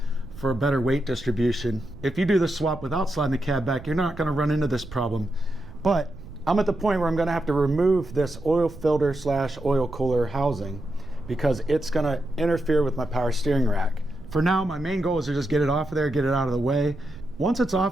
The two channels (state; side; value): noise; right; rumble, 17 dB below the sound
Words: for a better weight distribution. If you do the swap without sliding the cab back, you're not going to run into this problem. But I'm at the point where I'm going to have to remove this oil filter / oil cooler housing because it's going to interfere with my power steering rack. For now, my main goal is to just get it off of there, get it out of the way. Once it's